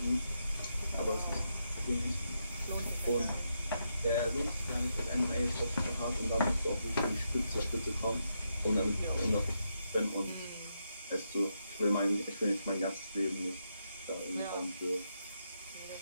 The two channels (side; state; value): both; inverted; correlation -0.82